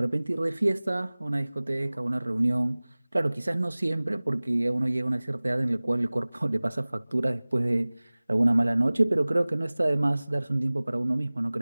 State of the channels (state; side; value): inverted; both; correlation -1.00